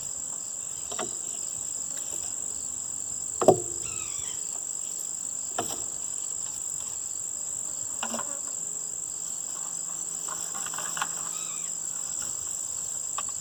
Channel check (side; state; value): both; identical; correlation 1.00